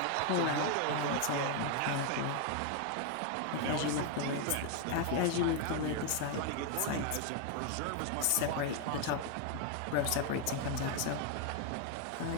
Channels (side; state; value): both; different; correlation 0.01